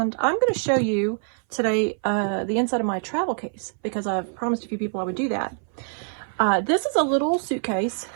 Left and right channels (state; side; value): silent; left; 59 dB below the other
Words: I'm going to show you today the inside of my travel case because I've promised a few people I would do that. This is a little suitcase